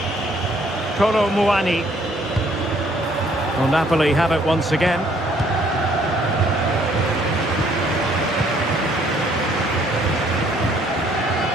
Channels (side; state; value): both; normal; correlation 0.64